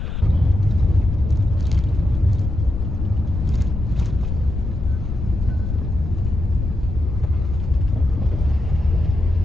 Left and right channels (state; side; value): noise; left; rumble, 4 dB below the sound